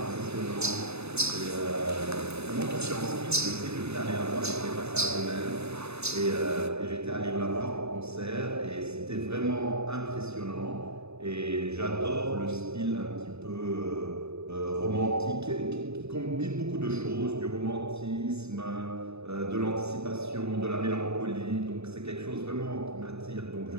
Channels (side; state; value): left; late; 0.80 ms